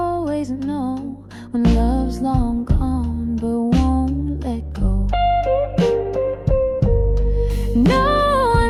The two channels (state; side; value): identical; both; correlation 1.00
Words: know when love's long gone but won't let go. No